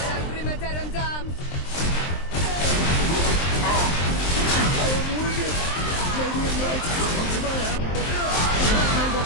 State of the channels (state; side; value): late; right; 23 ms